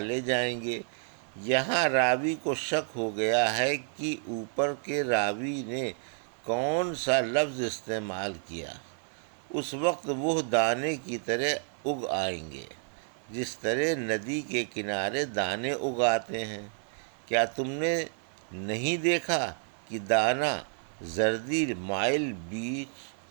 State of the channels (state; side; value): silent; left; 58 dB below the other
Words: جائیں گے۔ یہاں راوی کو شک ہو گیا ہے کہ اوپر کے راوی نے کون سا لفظ استعمال کیا۔ اس وقت وہ دانے کی طرح اگ آئیں گے، جس طرح ندی کے کنارے دانے اگاتے ہیں۔ کیا تم نے نہیں دیکھا کہ دانہ زردی مائل بیچ